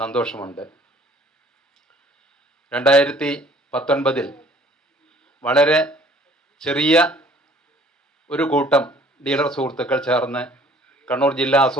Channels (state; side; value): normal; both; correlation 0.56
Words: 2019 വളരെ ചെറിയ ഒരു കൂട്ടം ഡീലർ സുഹൃത്തുക്കൾ ചേർന്ന് കണ്ണൂർ ജില്ലാ